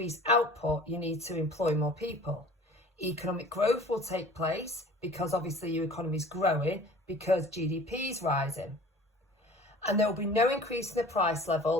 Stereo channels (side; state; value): both; normal; correlation 0.45